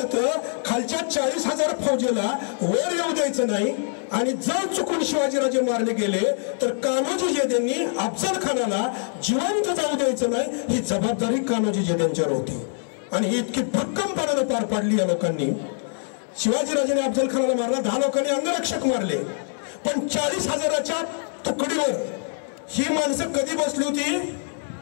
खालच्या 40,000 फौजेला वर येऊ द्यायचं नाही. आणि जर चुकून शिवाजीराजे मारले गेले तर कान्होजी जेधेंनी अफजल खानाला जिवंत जाऊ द्यायचं नाही, ही जबाबदारी कान्होजी जेधेंच्यावर होती. आणि ही इतकी भक्कमपणाने पार पाडली या लोकांनी. शिवाजीराजांनी अफजल खानाला मारला, 10 लोकांनी अंगरक्षक मारले, पण 40,000च्या तुकडीवर ही माणसं कधी बसली होती?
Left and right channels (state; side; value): silent; right; 62 dB below the other